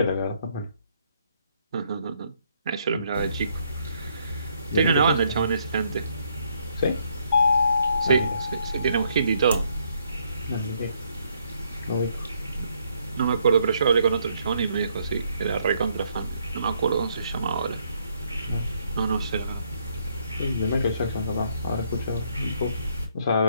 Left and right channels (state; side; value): inverted; both; correlation -0.71